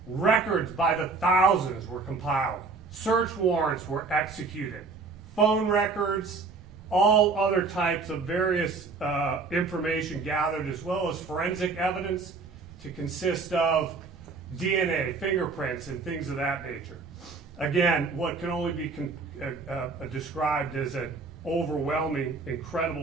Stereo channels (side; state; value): left; quieter; 4.2 dB